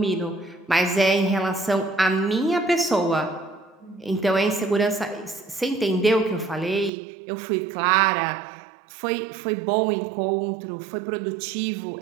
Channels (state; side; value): drops out; left; at 6.9 s